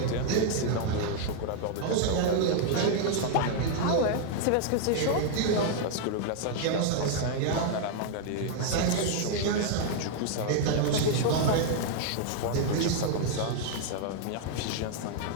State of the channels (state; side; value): different; both; correlation 0.00